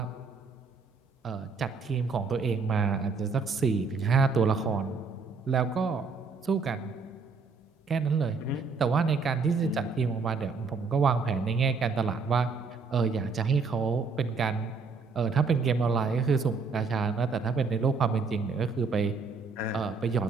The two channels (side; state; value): left; quieter; 4.6 dB